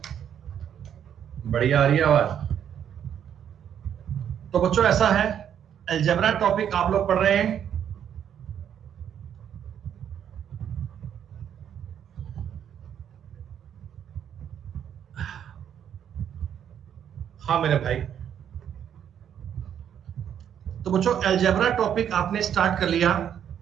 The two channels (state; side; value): quieter; left; 9.2 dB